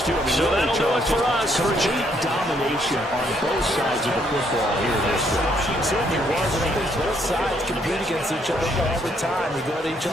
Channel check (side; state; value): both; normal; correlation 0.70